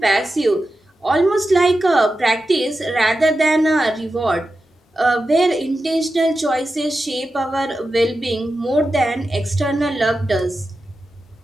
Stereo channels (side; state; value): both; normal; correlation 0.91